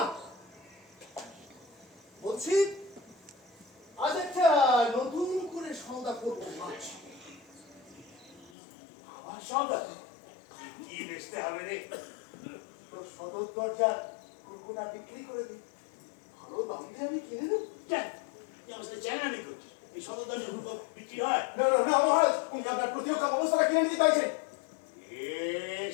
বলছি আজ একটা নতুন করে সওদা করবো ভাবছি। আমার সওদা কি বেচতে হবে রে? তোর সদর দরজার কুরকুনা বিক্রি করে দিই, ভালো দাম দিয়ে আমি কিনে নেব। কেন এই অবস্থায় চ্যানানি করছিস? এই সদরদানে হুড়কো বিক্রি হয়? না না না মহারাজ, উনি আপনার প্রতিরক্ষা ব্যবস্থাটা কিনে নিতে চাইছেন। এ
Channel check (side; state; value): right; drops out; at 8.5 s